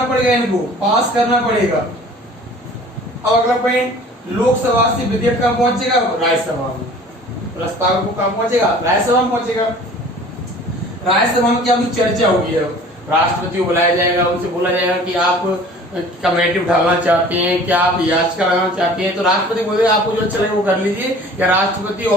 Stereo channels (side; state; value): both; normal; correlation 0.47